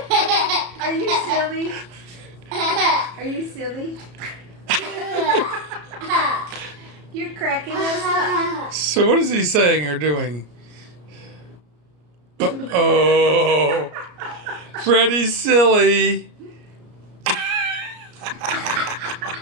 Are you silly? Are you silly? You're cracking us up. So what is he saying or doing? Oh, Freddie's silly.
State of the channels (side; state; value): left; late; 34 ms